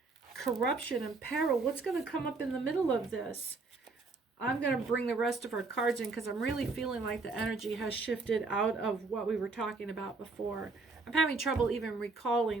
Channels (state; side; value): quieter; left; 3.9 dB